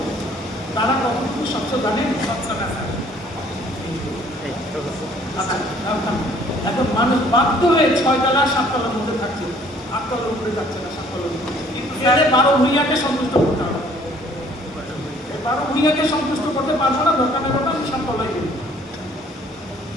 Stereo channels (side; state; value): both; normal; correlation 0.58